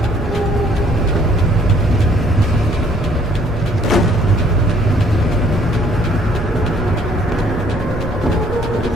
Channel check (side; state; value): both; normal; correlation 0.62